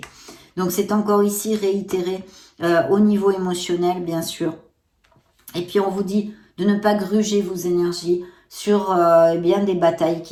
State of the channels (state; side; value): identical; both; correlation 1.00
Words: Donc c'est encore ici réitéré au niveau émotionnel, bien sûr. Et puis on vous dit de ne pas gruger vos énergies sur des batailles